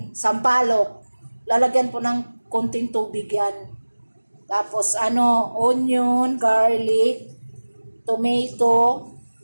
sampalok. Lalagyan po ng konting tubig yan. Tapos onion, garlic, tomato,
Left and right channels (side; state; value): both; inverted; correlation -1.00